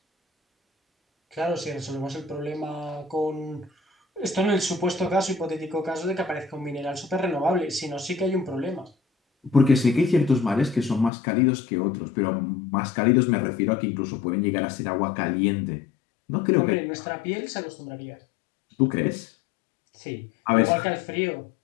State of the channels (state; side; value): drops out; right; at 11.1 s